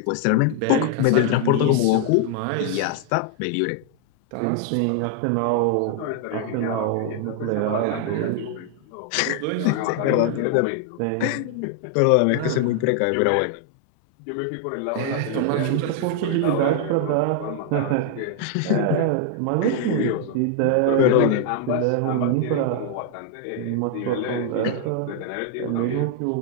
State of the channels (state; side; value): different; both; correlation 0.00